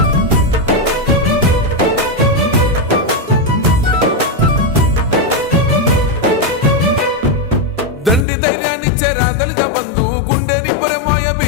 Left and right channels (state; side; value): drops out; right; at 8.2 s